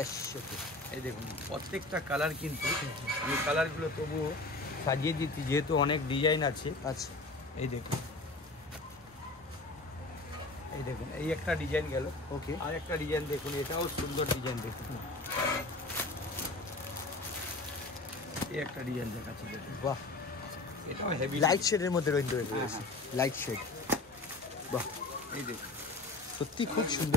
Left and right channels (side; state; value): right; quieter; 3.1 dB